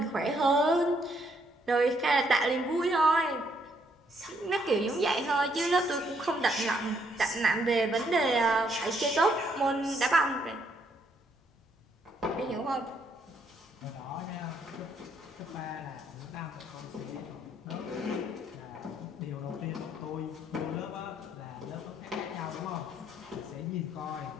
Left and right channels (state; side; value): normal; both; correlation 0.71